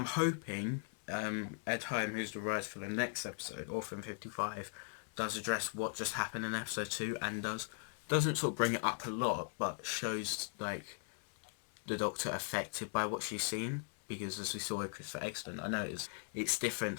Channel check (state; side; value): silent; right; 52 dB below the other